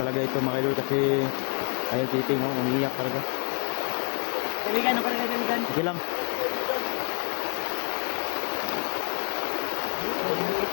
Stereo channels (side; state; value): right; quieter; 37.6 dB